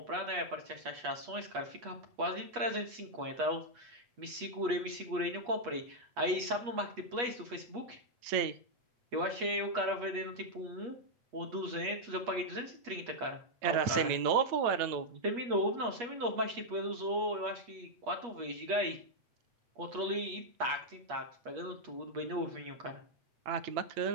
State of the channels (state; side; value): late; left; 8.3 ms